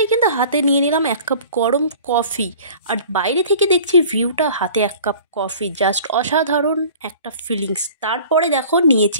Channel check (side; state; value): both; inverted; correlation -0.46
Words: কিন্তু হাতে নিয়ে নিলাম 1 কাপ গরম কফি। আর বাইরে থেকে দেখছি ভিউটা, হাতে 1 কাপ কফি, জাস্ট অসাধারণ একটা ফিলিংস। তারপরে দেখো